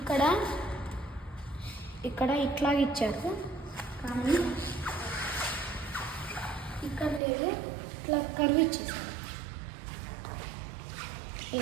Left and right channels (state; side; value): drops out; left; at 7.2 s